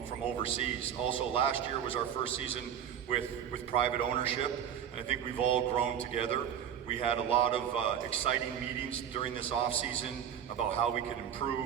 overseas. Also, last year was our first season with private ownership, and I think we've all grown together. We had a lot of exciting meetings during this off season about how we could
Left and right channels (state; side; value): quieter; left; 9.1 dB